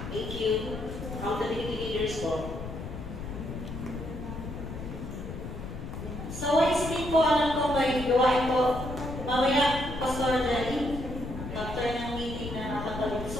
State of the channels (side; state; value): left; noise; rumble, 8 dB below the sound